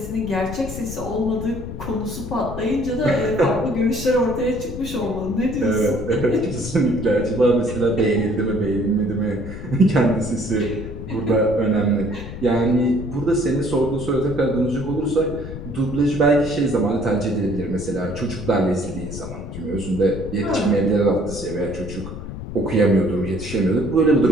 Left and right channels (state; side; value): noise; left; rumble, 9 dB below the sound